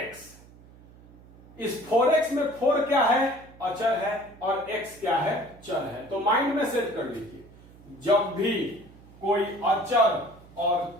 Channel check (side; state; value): right; noise; hum, 23 dB below the sound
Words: इस 4x में 4 क्या है? अचर है, और x क्या है? चर है। तो माइंड में सेट कर लीजिए, जब भी कोई अचर